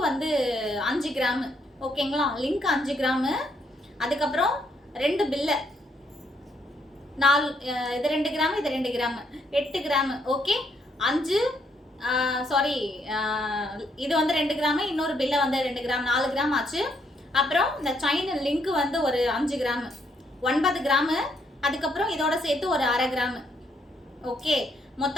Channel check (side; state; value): both; normal; correlation 0.73